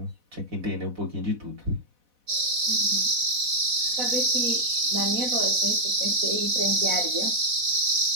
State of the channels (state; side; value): late; left; 4.1 ms